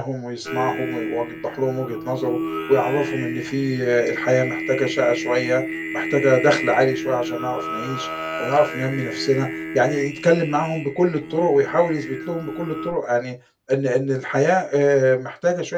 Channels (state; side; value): identical; both; correlation 1.00